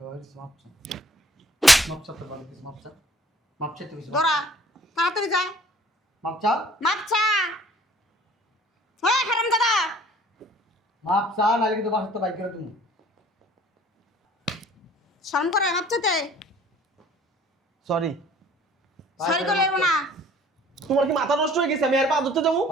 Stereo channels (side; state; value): both; normal; correlation 0.53